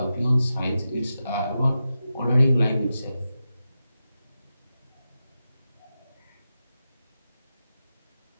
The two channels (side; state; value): both; inverted; correlation -0.90